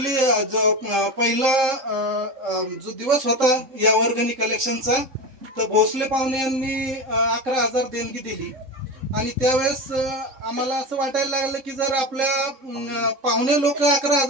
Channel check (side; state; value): left; late; 3.8 ms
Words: जो पहिला जो दिवस होता या वर्गणी कलेक्शनचा तर भोसले पाहुणे यांनी 11,000 देणगी दिली आणि त्यावेळेस आम्हाला असं वाटायला लागलं की जर आपल्या पाहुणे लोक